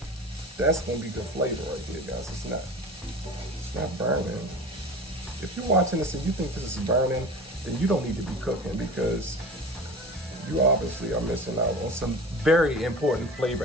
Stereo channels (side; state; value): both; normal; correlation 0.35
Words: That's going to be good flavor right there, guys. It's not burning. If you're watching this and you think this is burning, then you don't need to be cooking because you obviously are missing out on some very important flavor